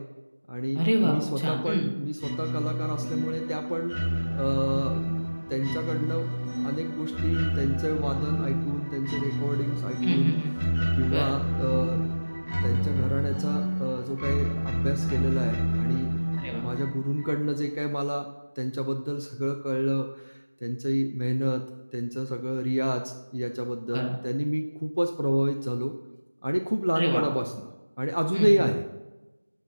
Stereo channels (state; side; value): inverted; both; correlation -1.00